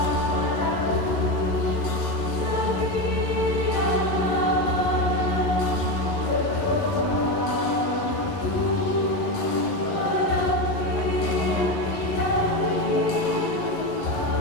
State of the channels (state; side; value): late; right; 11 ms